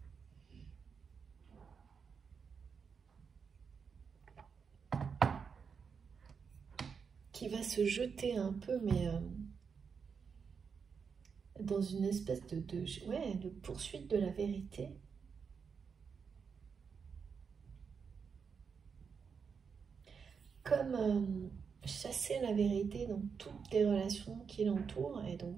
qui va se jeter un peu, mais dans une espèce de poursuite de la vérité. Comme chasser la vérité dans toutes les relations qui l'entourent, et donc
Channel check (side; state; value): left; quieter; 6.0 dB